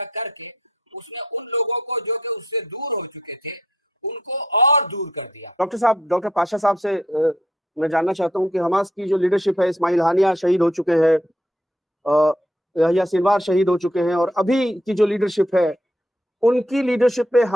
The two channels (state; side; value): normal; both; correlation 0.71